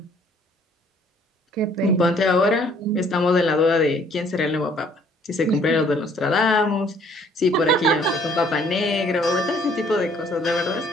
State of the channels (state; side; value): normal; both; correlation 0.60